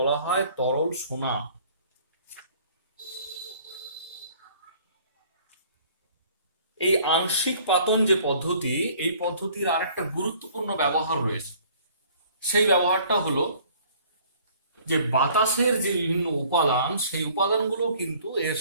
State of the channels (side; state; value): both; inverted; correlation -0.55